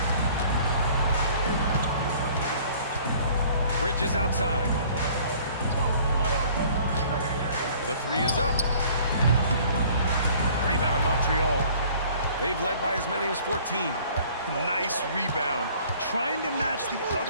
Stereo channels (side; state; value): both; inverted; correlation -0.53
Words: Bridges outside. The 3 is up. Rebound Montreal. They've led by as many as 14. Nice rebound. Trying to match the